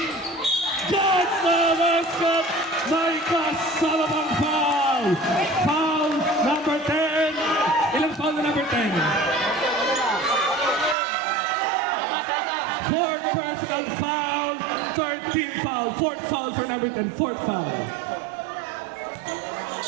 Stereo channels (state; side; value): drops out; left; at 11.0 s